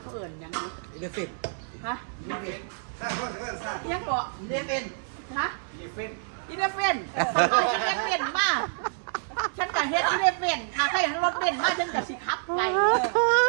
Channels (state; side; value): silent; left; 59 dB below the other